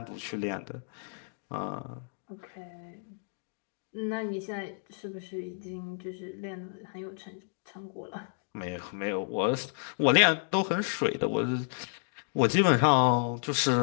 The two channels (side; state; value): right; silent; digital silence